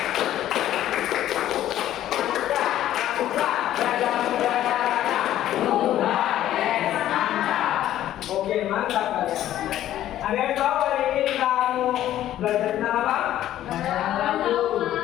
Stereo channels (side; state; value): right; quieter; 12.6 dB